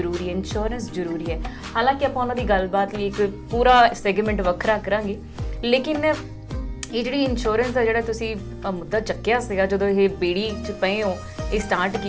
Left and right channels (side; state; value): both; identical; correlation 1.00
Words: ਹੈ, ਇੰਸ਼ੋਰੈਂਸ ਜ਼ਰੂਰੀ ਹੈ। ਹਾਲਾਂਕਿ ਆਪਾਂ ਉਹਨਾਂ ਦੀ ਗੱਲਬਾਤ ਲਈ ਇੱਕ ਪੂਰਾ ਸੈਗਮੈਂਟ ਵੱਖਰਾ ਕਰਾਂਗੇ, ਲੇਕਿਨ ਇਹ ਜਿਹੜੀ ਇੰਸ਼ੋਰੈਂਸ ਦਾ ਜਿਹੜਾ ਤੁਸੀਂ ਮੁੱਦਾ ਚੱਕਿਆ ਸੀਗਾ ਜਦੋਂ ਇਹ ਬੇੜੀ 'ਚ ਪਏ ਹੋ, ਇਹ ਸਟਾਰਟ